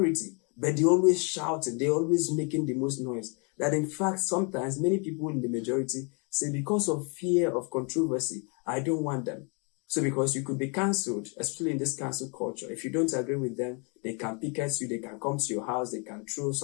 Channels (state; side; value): quieter; right; 35.0 dB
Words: but they always shouting, they always making the most noise. That in fact, sometimes many people in the majority say, because of fear of controversy, I don't want them. So because you could be cancelled, especially in this cancel culture, if you don't agree with them, they can picket you, they can come to your house, they can throw